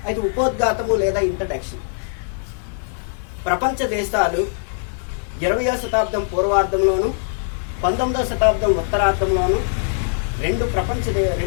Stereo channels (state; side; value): silent; right; digital silence